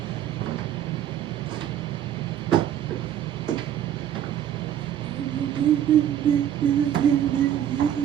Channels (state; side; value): quieter; left; 10.4 dB